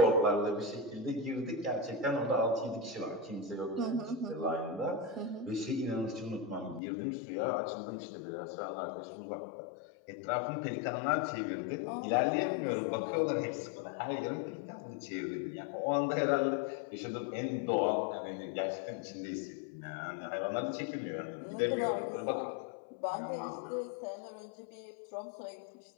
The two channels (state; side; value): drops out; right; at 6.8 s